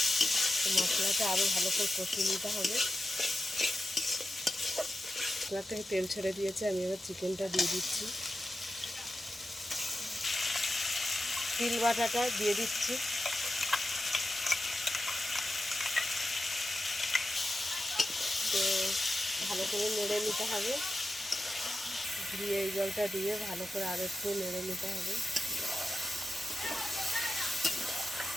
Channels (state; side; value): normal; both; correlation 0.91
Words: মশলাটা আরও ভালো করে কষিয়ে নিতে হবে। মশলা থেকে তেল ছেড়ে দিয়েছে, আমি এবার চিকেনটা দিয়ে দিচ্ছি। তিল বাটাটা দিয়ে দিচ্ছি, তো ভালো করে নেড়ে নিতে হবে। দিয়ে এই জলটা দিয়ে ভালো করে আরও একটু নেড়ে নিতে হবে।